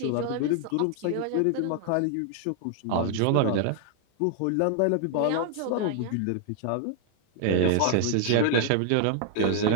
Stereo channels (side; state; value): both; different; correlation 0.00